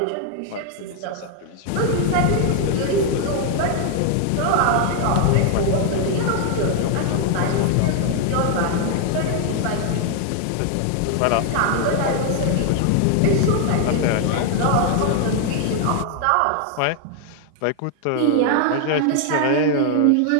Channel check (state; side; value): different; both; correlation 0.00